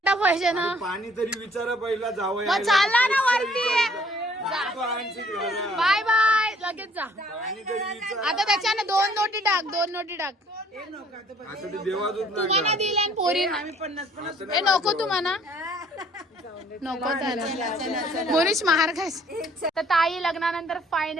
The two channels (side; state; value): both; normal; correlation 0.60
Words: पैसे ना. पाणी तरी विचारा पहिला जावं. मग चालला ना वरती. बाय बाय लगेच जा. आता त्याच्यानं 2 नोटी टाक. 2 नोटी टाक. आता ते देवाजून तुम्हाला दिल्या पोरी हे नको तुम्हाला नको. मोनीश महार खायचे. तर ताई लग्नानंतर